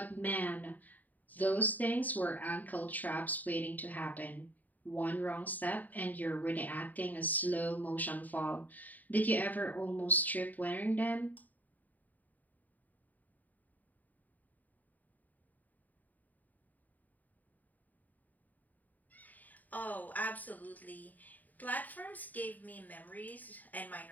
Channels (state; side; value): late; right; 0.082 ms